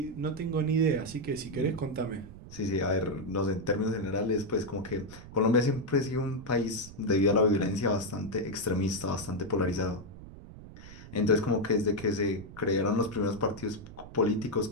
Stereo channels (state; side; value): noise; right; rumble, 16 dB below the sound